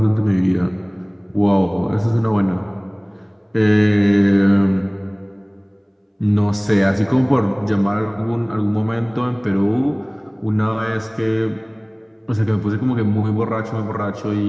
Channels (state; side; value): identical; both; correlation 1.00